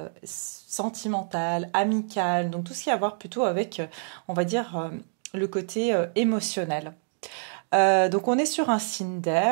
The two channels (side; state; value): left; silent; digital silence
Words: sentimentale, amicale. Donc tout ce qui a à voir plutôt avec, on va dire, le côté émotionnel. Donc on est sur un signe